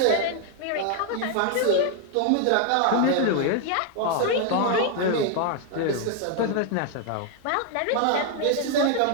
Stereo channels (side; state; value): both; different; correlation 0.00